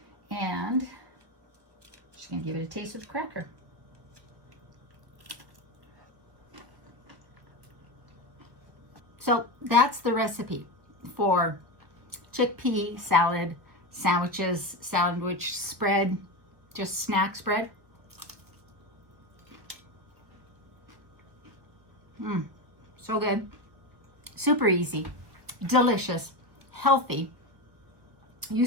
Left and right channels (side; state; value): left; late; 1.2 ms